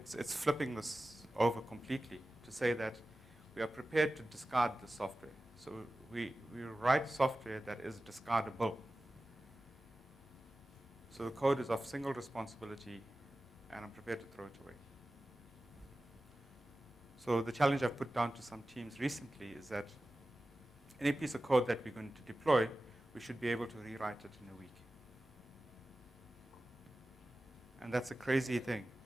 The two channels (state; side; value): normal; both; correlation 0.95